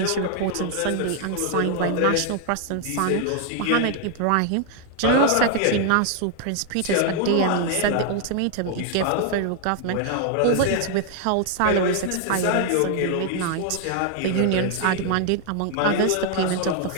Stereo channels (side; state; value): both; different; correlation 0.00